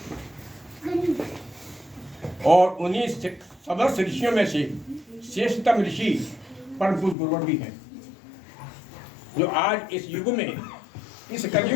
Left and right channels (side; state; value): right; drops out; at 7.2 s